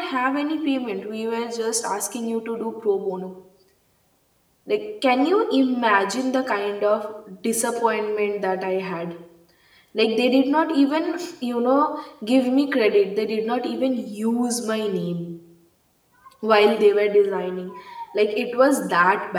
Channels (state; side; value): identical; both; correlation 1.00